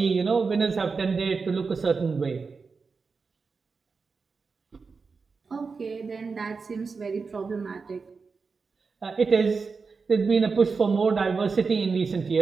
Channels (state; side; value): quieter; left; 4.8 dB